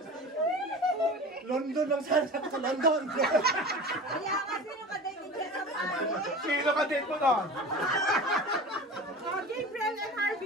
London lang sana sa London. Kaya nga sino ka-date niya sa Paris? Sino ka date mo nun? Gabriel and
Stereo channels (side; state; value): both; normal; correlation 0.35